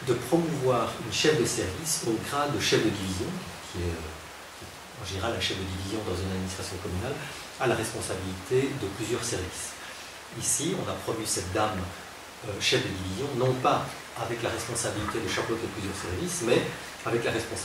promouvoir une chef de service au grade de chef de division, qui est en général un chef de division dans une administration communale, à la responsabilité de plusieurs services. Ici, on a promu cette dame chef de division, non pas avec la responsabilité de chapeauter plusieurs services, mais avec la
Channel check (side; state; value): both; identical; correlation 1.00